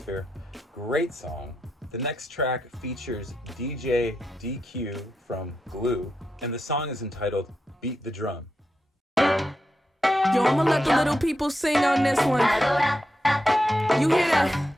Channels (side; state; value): both; normal; correlation 0.86